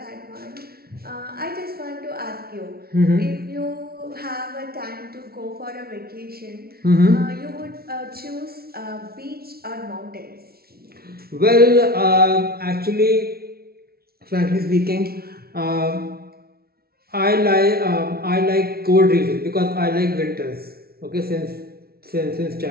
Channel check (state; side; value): late; left; 0.44 ms